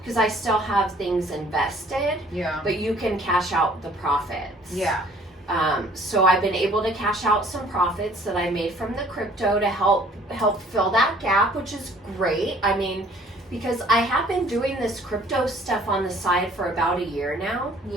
I still have things invested. Yeah. But you can cash out the profits. Yeah. So I've been able to cash out some profits that I made from the crypto to help fill that gap, which is great. I mean, because I have been doing this crypto stuff on the side for about a year now.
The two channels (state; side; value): normal; both; correlation 0.56